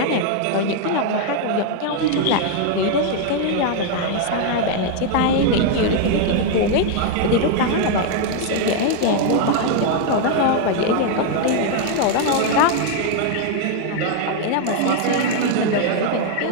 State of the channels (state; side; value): different; both; correlation 0.00